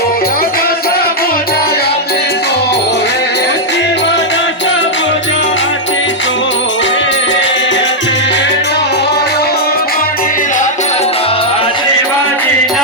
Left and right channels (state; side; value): normal; both; correlation -0.04